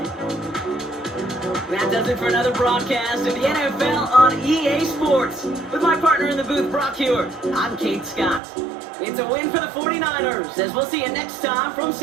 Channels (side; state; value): left; drops out; at 8.4 s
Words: That does it for another broadcast of the NFL on EA Sports. With my partner in the booth, Brock Hewitt, I'm Kate Scott. It's a win for the 49ers, as we'll see you next time from